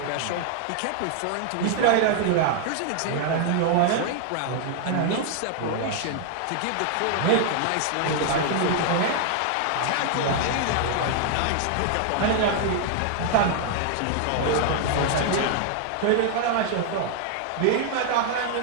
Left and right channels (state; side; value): different; both; correlation 0.00